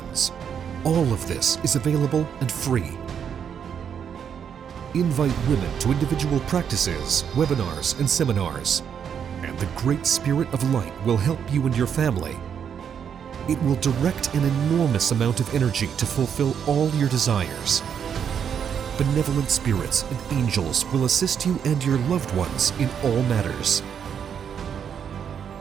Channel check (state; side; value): quieter; left; 7.9 dB